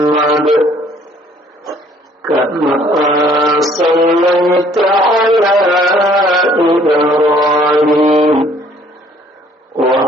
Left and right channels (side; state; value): both; normal; correlation 0.59